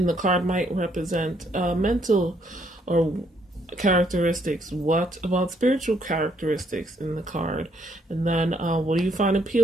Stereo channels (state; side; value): normal; both; correlation 0.70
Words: the card might represent mental or characteristics? What about spiritual characteristics in the card? And then what do you find